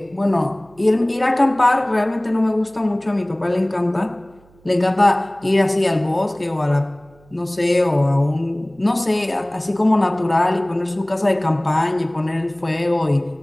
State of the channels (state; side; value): noise; right; hum, 29 dB below the sound